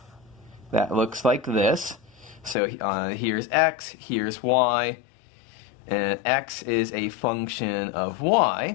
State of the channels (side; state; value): right; drops out; at 2.6 s